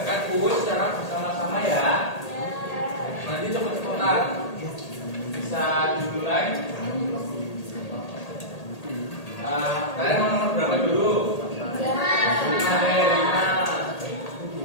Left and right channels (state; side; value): late; right; 1.8 ms